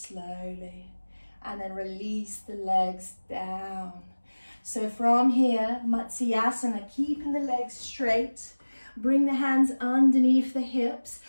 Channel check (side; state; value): both; inverted; correlation -1.00